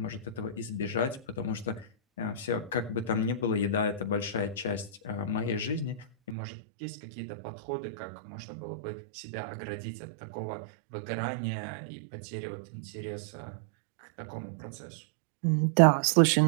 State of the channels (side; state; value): left; drops out; at 6.4 s